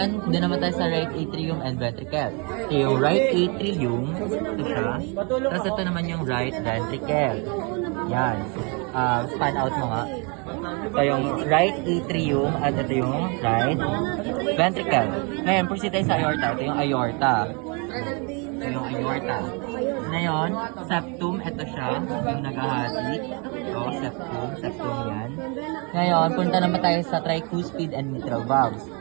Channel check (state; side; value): quieter; left; 33.3 dB